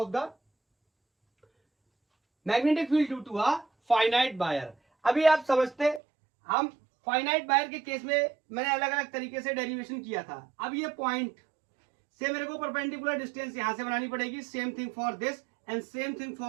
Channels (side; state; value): left; drops out; at 6.0 s